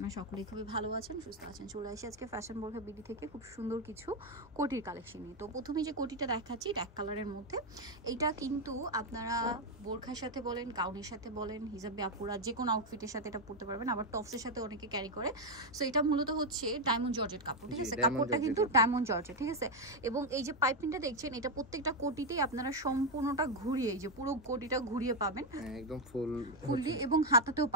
সকলেই খুবই ভালো আছেন, সুস্থ আছেন। চলে আসি আজকে ফ্যাশন বোরখা বিডি থেকে খুব সুন্দর কিছু কোটির কালেকশন নিয়ে। তো প্রথমে যে কোটিটা দেখাচ্ছি এক কালারের মধ্যে, এইটা কিন্তু আপনারা বোরখার সাথে বলেন, গাউনের সাথে বলেন, হিজাবে আপুরা যে কোনো আউটফিটের সাথে এটা পরতে পারবেন, আবার টপসের সাথে অনেকে ক্যারি করে। সো এটা মূলত হচ্ছে ডায়মন্ড জর্জেট কাপড়, ঠিক আছে? কাপড়টা কিন্তু ডায়মন্ড জর্জেট, ঠিক আছে? এবং এই যে পাইপিংটা দেখছেন, এটা প্রত্যেকটা কোটিতেই আপনারা সম্পূর্ণটা ঘুরিয়ে, এই যে পুরো কোটিটা ঘুরিয়ে পাবেন একদম ফুললি, এবং হাতাতেও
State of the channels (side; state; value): both; normal; correlation 0.03